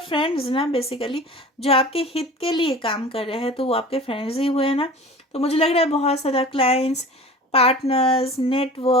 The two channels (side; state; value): both; normal; correlation 0.39